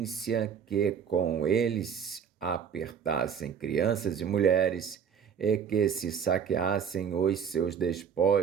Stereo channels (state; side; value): quieter; left; 7.4 dB